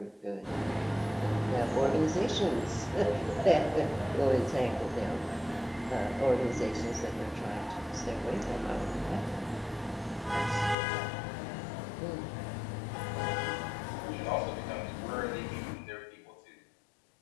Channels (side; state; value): right; drops out; at 10.8 s